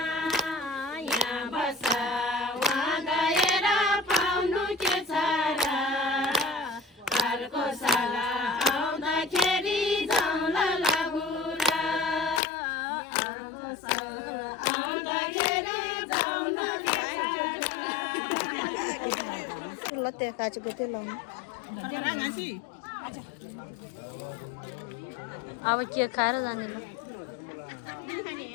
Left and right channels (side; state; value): right; drops out; at 12.4 s